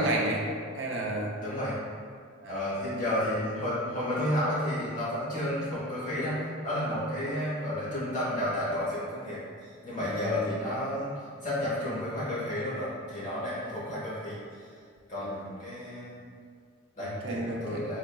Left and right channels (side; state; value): both; normal; correlation 0.30